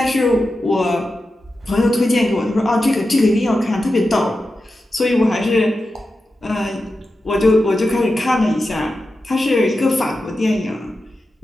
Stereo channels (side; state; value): both; normal; correlation 0.91